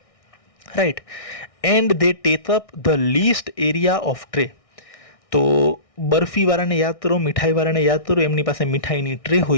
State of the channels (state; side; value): late; right; 1.6 ms